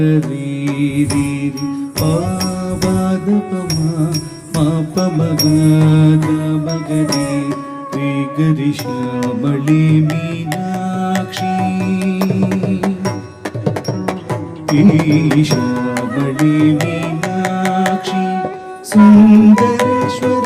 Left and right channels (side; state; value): both; identical; correlation 1.00